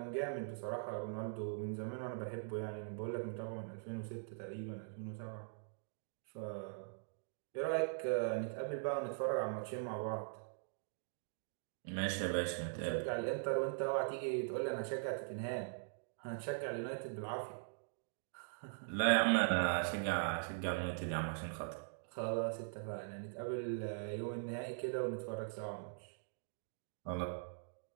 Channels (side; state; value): left; silent; digital silence